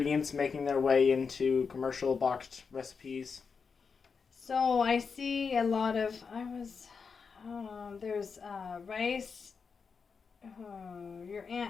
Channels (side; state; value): right; quieter; 5.5 dB